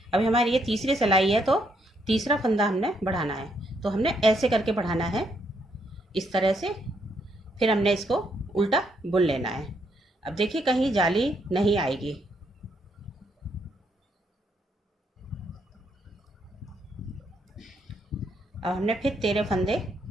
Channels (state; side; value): normal; both; correlation 0.74